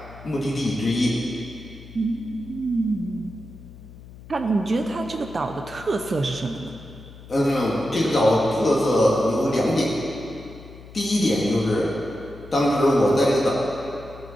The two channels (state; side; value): noise; left; hum, 18 dB below the sound